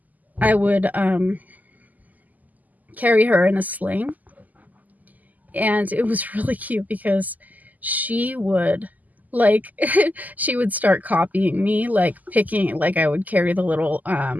carry her in a sling. And it was really cute because she would like she would start copying me, like picking, like I would carry the little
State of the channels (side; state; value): left; late; 0.080 ms